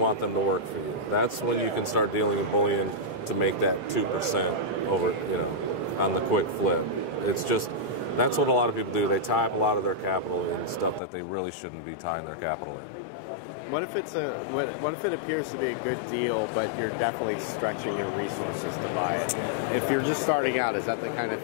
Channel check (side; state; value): right; drops out; at 11.0 s